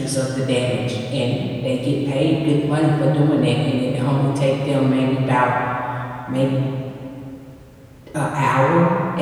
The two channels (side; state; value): both; identical; correlation 1.00